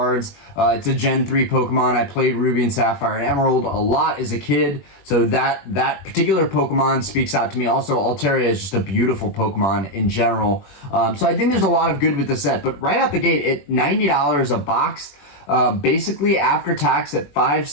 It's a Gen 3 Pokemon. I played Ruby and Sapphire and Emerald a lot as a kid, so that particular Pokemon speaks out to me. Also, Altaria is just a beautiful Pokemon in general. So I think there's a lot of good with the set. But right out the gate, at $90 a box, basically after tax at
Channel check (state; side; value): late; right; 21 ms